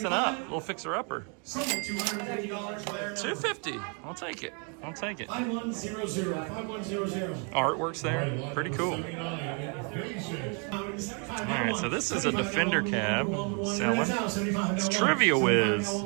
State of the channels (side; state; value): left; quieter; 37.2 dB